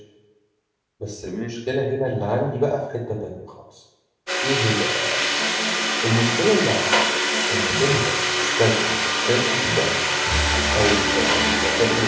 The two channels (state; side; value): identical; both; correlation 1.00